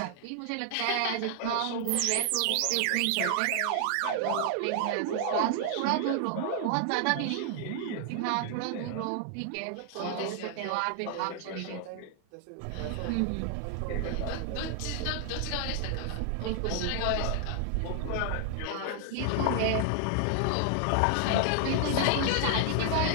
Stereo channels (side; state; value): both; different; correlation 0.00